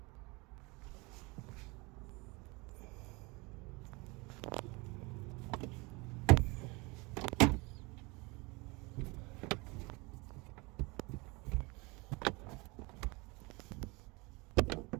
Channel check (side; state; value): left; quieter; 26.5 dB